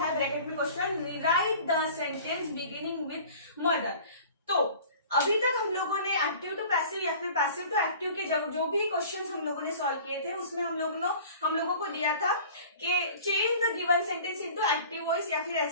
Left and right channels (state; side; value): inverted; both; correlation -0.44